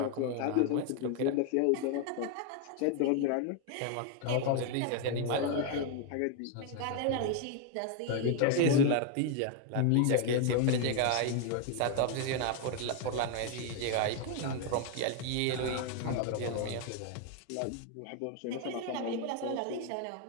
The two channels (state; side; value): different; both; correlation 0.01